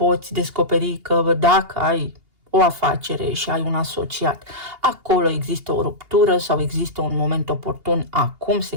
descoperi că dacă ai o afacere și ai un asociat, acolo există o ruptură sau există un moment oportun, acum se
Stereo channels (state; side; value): late; left; 2.8 ms